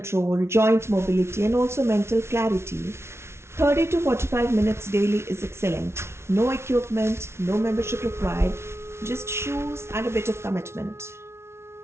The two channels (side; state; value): left; late; 0.13 ms